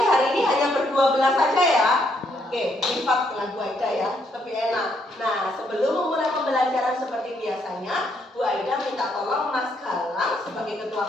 hari ini hanya berdua belas saja ya? Oke, lipat dengan Bu Aida ya, lebih enak. Nah, sebelum memulai pembelajaran seperti biasanya, Bu Aida minta tolong Mas Galang sebagai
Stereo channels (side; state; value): both; normal; correlation 0.73